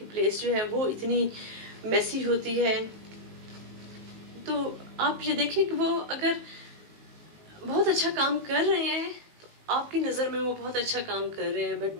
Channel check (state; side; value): late; left; 19 ms